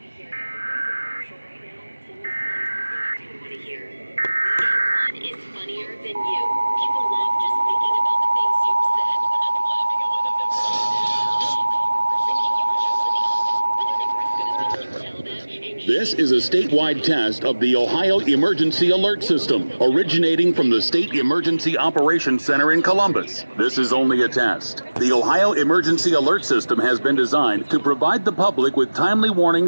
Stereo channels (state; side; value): inverted; both; correlation -1.00